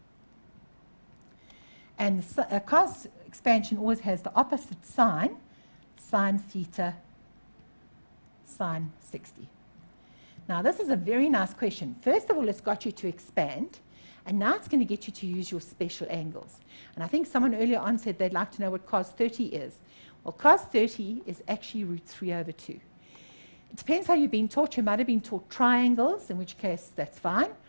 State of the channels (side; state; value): both; inverted; correlation -1.00